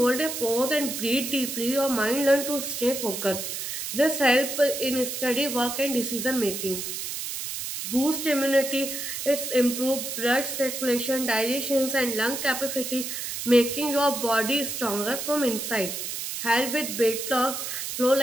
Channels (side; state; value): right; noise; hiss, 5 dB below the sound